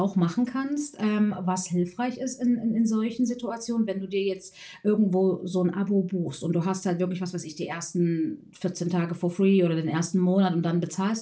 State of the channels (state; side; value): identical; both; correlation 1.00